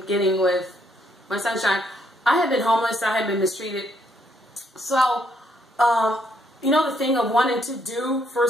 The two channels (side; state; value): both; normal; correlation 0.72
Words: getting with my sunshine, I had been homeless. I had been mistreated. So, the thing of wanting to do for